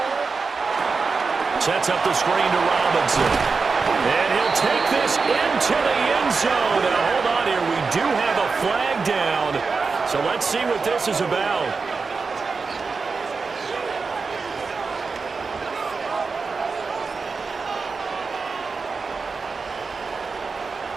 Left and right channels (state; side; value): quieter; left; 4.6 dB